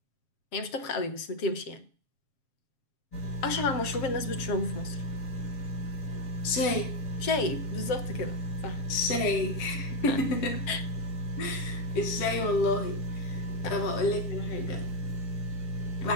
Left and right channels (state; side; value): late; right; 7.3 ms